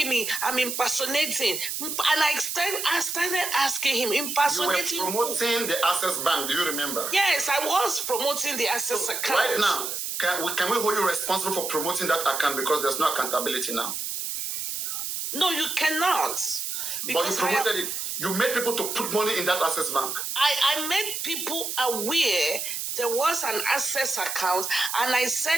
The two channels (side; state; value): right; noise; hiss, 4 dB below the sound